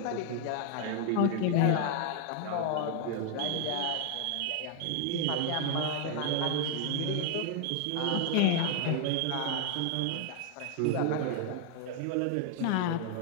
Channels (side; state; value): both; different; correlation 0.00